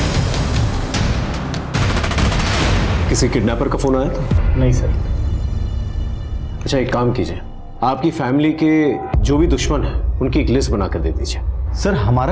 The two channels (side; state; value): both; identical; correlation 1.00